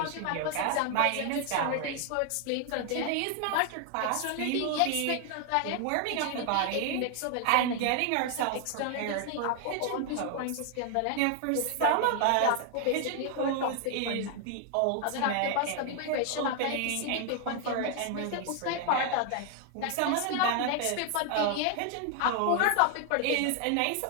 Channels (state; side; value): different; both; correlation 0.00